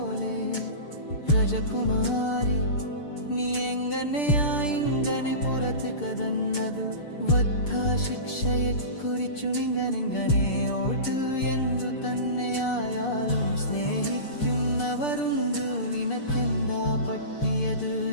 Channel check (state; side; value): late; right; 6.7 ms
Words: രാജകുമാരി നീ എങ്ങനെയാ ഇങ്ങനെ പുറത്ത് കടന്നതു? വധശിക്ഷയെക്കുറിച്ചു നിങ്ങനെങ്ങനെ ഓട്ട് എന്തു തന്നെയായാലും സ്നേഹിക്കുന്നവരുണ്ട്. നിനക്കെന്താ പറ്റിയത്?